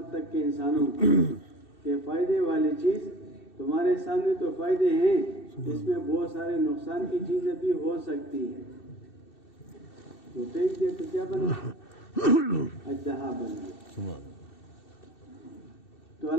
تک کے انسانوں کو کہ فائدے والی چیز تمہارے سامنے تو فائدے ہیں، اس میں بہت سارے نقصان کی چیزیں بھی ہو سکتی ہیں۔ تو پھینک دیا تو کیا بنا؟ اژدہا بن گیا۔ تو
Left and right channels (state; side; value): late; right; 2.7 ms